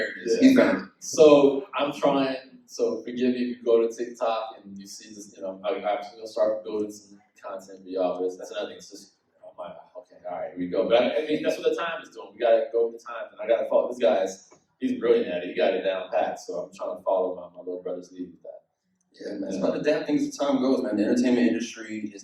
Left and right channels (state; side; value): identical; both; correlation 1.00